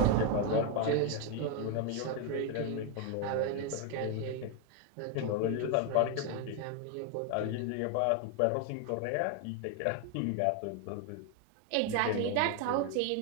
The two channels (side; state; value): both; different; correlation 0.01